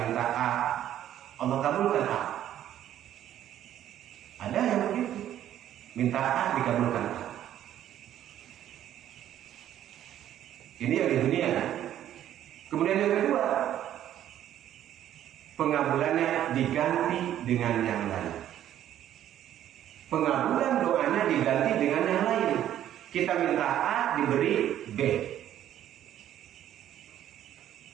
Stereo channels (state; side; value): quieter; left; 11.5 dB